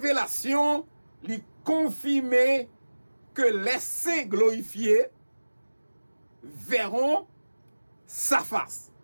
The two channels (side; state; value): both; inverted; correlation -1.00